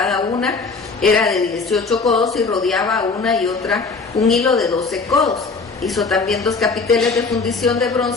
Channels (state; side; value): quieter; right; 4.3 dB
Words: una era de 18 codos, y rodeaba una y otra un hilo de 12 codos. Hizo también 2 capiteles de fundición de